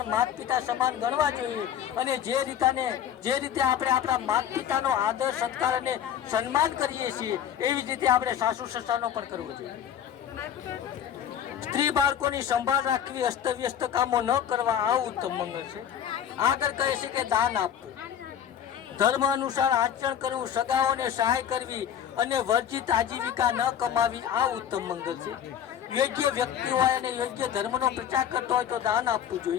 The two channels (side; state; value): right; quieter; 9.5 dB